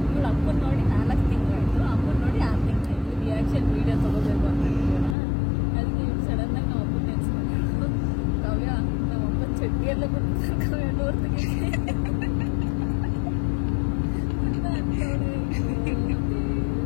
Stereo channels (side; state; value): right; drops out; at 5.2 s